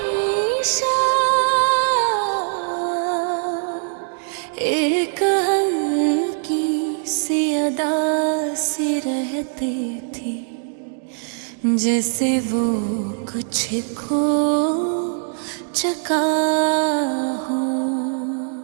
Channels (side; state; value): left; silent; 62 dB below the other